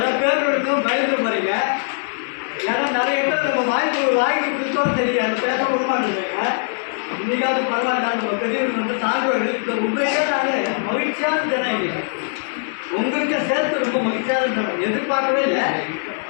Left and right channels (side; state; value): right; silent; 64 dB below the other